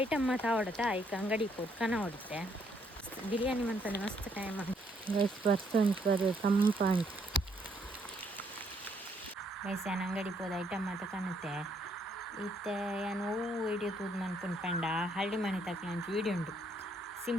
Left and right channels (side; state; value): both; normal; correlation 0.71